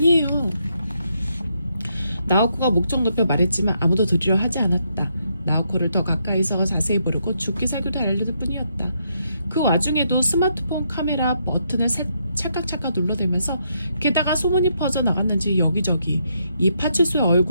나오코가 목청 높여 말했지만 아무도 들으려 하지 않았다. 나오코를 더 가까이서 자세히 보려고 죽기살기로 알려줄 뿐이었다. 그 와중에도 스마트폰 카메라 버튼을 찰칵찰칵 눌러대면서 게다가 소문이 퍼져나갔는지 여기저기 이 파출소에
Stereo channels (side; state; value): both; inverted; correlation -0.77